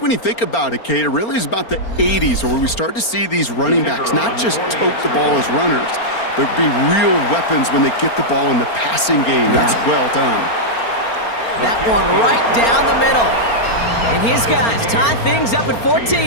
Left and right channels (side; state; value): right; late; 4.4 ms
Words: when you think about it, Kate, it really is about the 80s where we start to see these running backs not just tote the ball as runners, but be real weapons when they get the ball in the passing game. That's well done. That one right down the middle. And his guys tie things up at